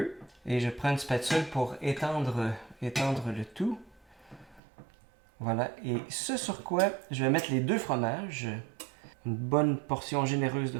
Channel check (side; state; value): left; drops out; at 4.6 s